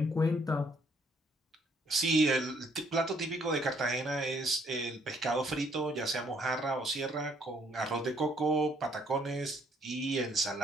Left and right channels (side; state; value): both; normal; correlation 0.66